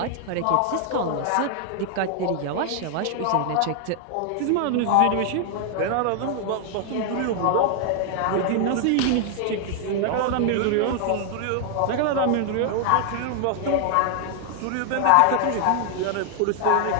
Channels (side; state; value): both; different; correlation 0.00